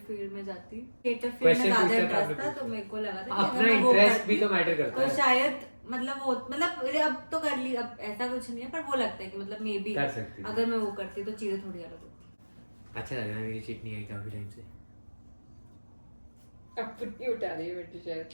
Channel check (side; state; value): both; inverted; correlation -1.00